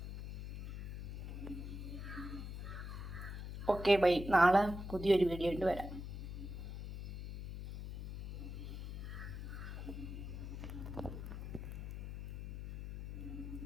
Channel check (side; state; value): left; noise; hum, 7 dB below the sound